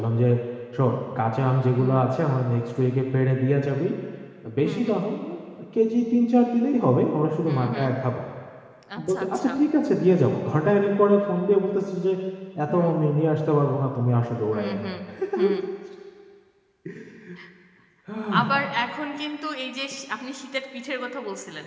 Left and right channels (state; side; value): identical; both; correlation 1.00